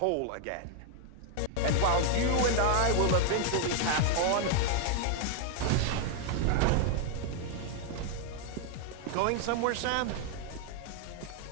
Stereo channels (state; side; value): different; both; correlation 0.00